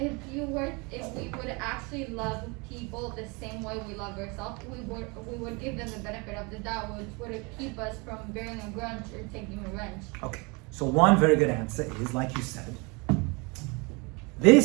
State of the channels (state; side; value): quieter; left; 29.0 dB